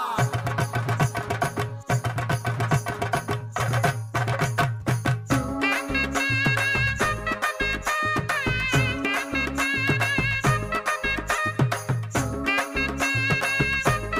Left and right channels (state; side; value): identical; both; correlation 1.00